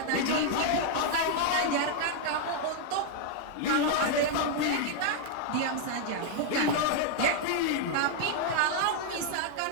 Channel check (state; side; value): different; both; correlation 0.00